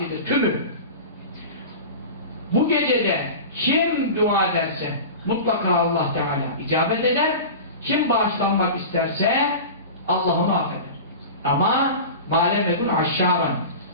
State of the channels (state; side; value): inverted; both; correlation -0.32